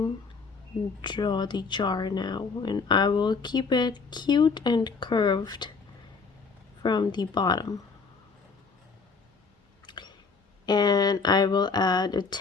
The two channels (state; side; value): quieter; right; 4.8 dB